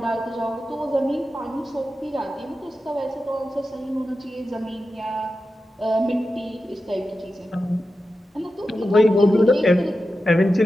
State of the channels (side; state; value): both; normal; correlation 0.91